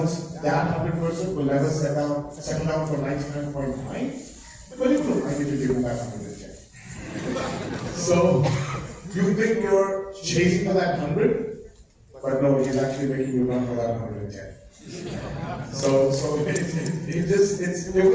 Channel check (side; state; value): both; identical; correlation 1.00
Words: that 100%, will never settle down for 99.9, but he will like you to give him that 110. So, you think you're chasing for that 100, but no, he's actually making you run for that 110. So it